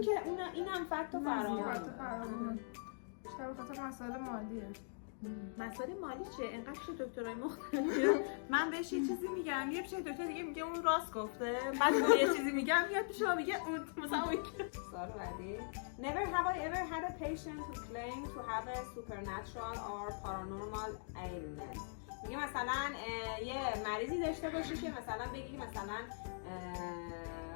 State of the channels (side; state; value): right; silent; digital silence